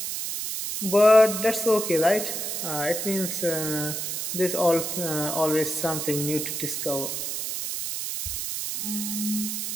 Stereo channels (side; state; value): right; noise; hiss, 3 dB below the sound